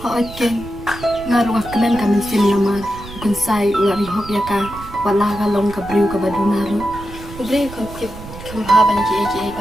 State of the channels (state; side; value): noise; right; rumble, 14 dB below the sound